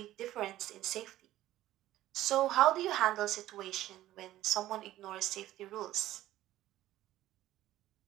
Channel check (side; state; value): left; quieter; 14.5 dB